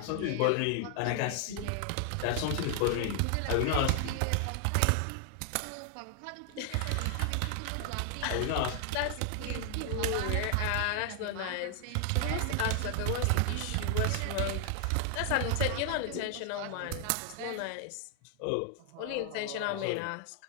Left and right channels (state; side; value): different; both; correlation 0.00